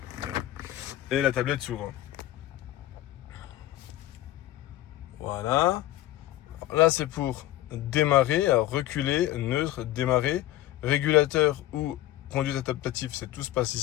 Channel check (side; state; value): right; quieter; 14.8 dB